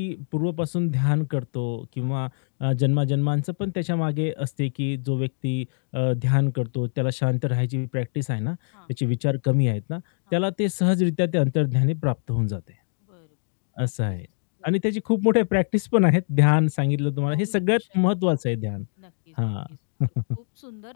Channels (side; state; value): right; silent; 62 dB below the other